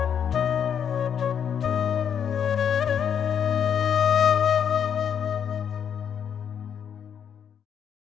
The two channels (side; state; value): right; quieter; 8.1 dB